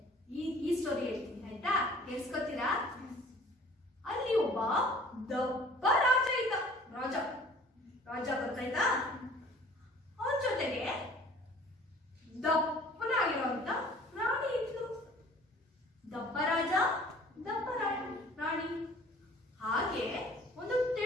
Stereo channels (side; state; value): both; normal; correlation 0.50